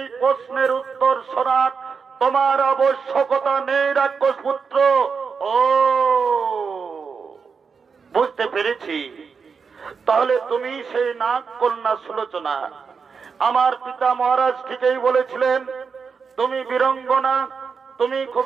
তোমার আবশ্যকতা নেই রাক্ষস পুত্র। ও বুঝতে পেরেছি, তাহলে তুমি সেই নাগ কন্যা সুলোচনা। আমার পিতা মহারাজ ঠিকই বলেছিলেন, তুমি বীরঙ্গনা, তুমি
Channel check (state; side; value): quieter; left; 5.6 dB